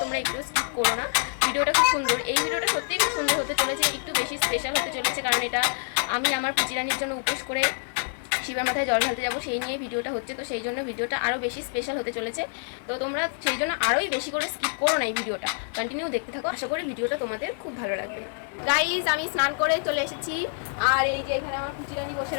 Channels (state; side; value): silent; right; 58 dB below the other